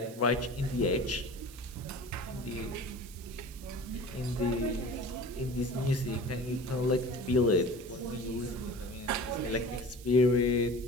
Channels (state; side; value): noise; right; hiss, 18 dB below the sound